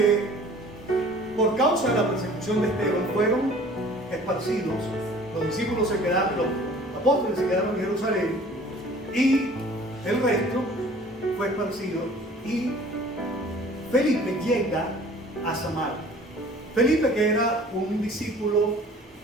por causa de la persecución de Esteban fueron esparcidos, los discípulos se quedaron, los apóstoles se quedaron en Jerusalén y el resto fue esparcido, y Felipe llega a Samaria. Felipe, que era un discípulo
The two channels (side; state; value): both; normal; correlation 0.49